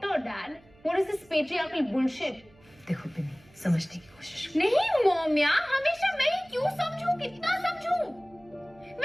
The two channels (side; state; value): right; noise; hum, 28 dB below the sound